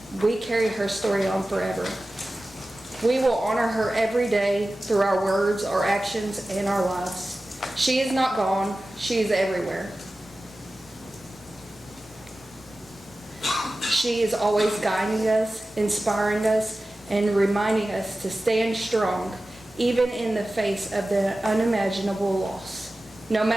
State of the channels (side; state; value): both; normal; correlation 0.95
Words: We carry her story on forever. We will honor her every day through our words, our actions, and our lives. She is not gone. She is everywhere. She is always guiding us, inspiring us, and reminding us to stand strong, even in the face of the unimaginable loss. No